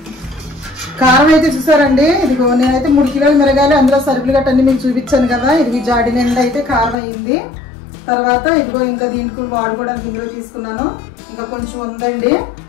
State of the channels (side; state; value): right; drops out; at 7.0 s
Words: కారం అయితే చూసారండి. ఇదిగో నేనైతే 3 కిలోలు మిరగాయలు, అందులో సరుకులు గట్ట అన్ని మీకు చూపించాను కదా. ఇది జాడి నిండా అయితే కారం అయింది. తర్వాత ఇదిగో ఇంకా దీనికి వాడుకోవడానికి ఇందులో తీసుకున్నాను. ఇంకా కొంచెం ఉందండి.